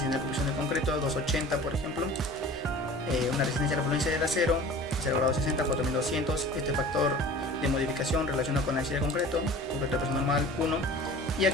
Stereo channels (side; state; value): both; normal; correlation 0.42